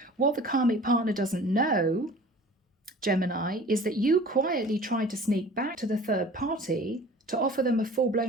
What the karmic partner doesn't know, Gemini, is that you quietly tried to sneak back to the third party to offer them a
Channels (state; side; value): normal; both; correlation 0.44